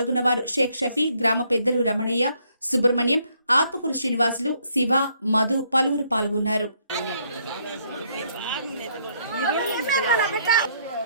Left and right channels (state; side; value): inverted; both; correlation -0.69